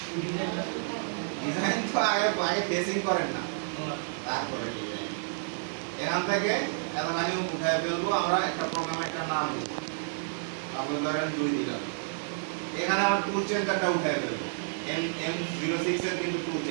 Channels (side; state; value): left; silent; digital silence